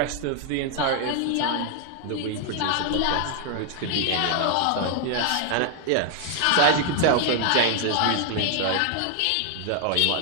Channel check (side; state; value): both; different; correlation 0.00